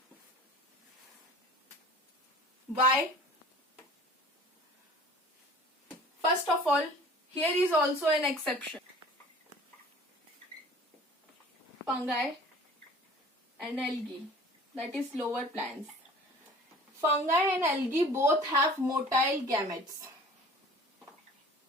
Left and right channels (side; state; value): both; normal; correlation 0.46